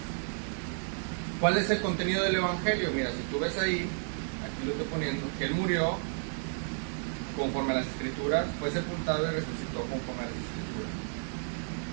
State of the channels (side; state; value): left; silent; 56 dB below the other